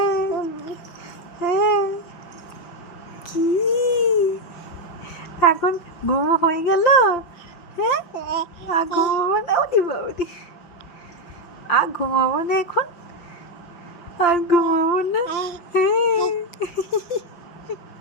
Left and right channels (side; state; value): right; late; 5.8 ms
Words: কি এখন ঘুমো হয়ে গেল? হ্যাঁ আর ঘুমাবো না? ওদি বাবুদি আর ঘুমাবো না এখন? আর ঘুমাবো না?